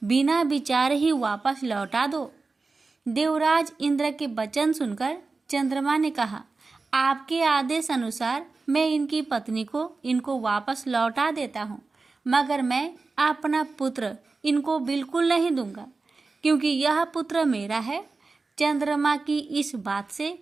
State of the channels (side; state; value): left; quieter; 3.9 dB